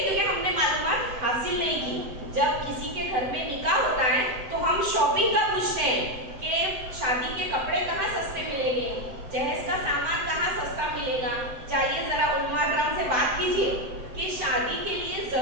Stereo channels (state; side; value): late; left; 7.9 ms